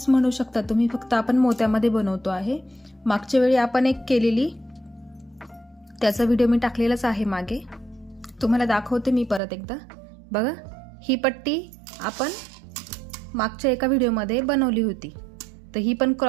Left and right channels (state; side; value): drops out; left; at 9.4 s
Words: म्हणू शकता तुम्ही, फक्त आपण मोत्यामध्ये बनवतो आहे। मागच्या वेळी आपण एक केलेली, त्याचा व्हिडिओ मी टाकलेलाच आहे मागे, तुम्हाला दाखवते मी परत एकदा। बघा, ही पट्टी आपण मागच्या एका व्हिडिओमध्ये बनवली होती, तर ही पण